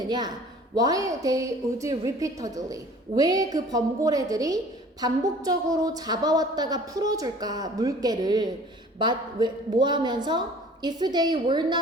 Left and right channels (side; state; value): both; normal; correlation 0.48